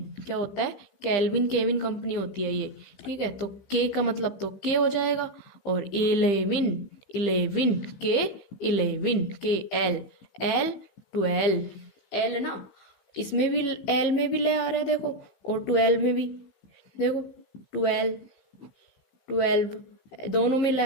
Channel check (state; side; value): late; right; 15 ms